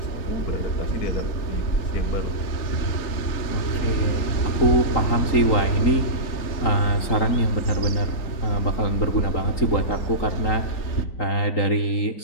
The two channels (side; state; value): right; late; 3.8 ms